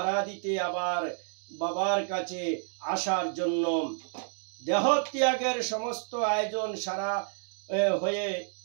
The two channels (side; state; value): left; silent; digital silence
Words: আবার বাবার কাছে আসার জন্য। দেহ ত্যাগের সমস্ত আয়োজন সারা হয়ে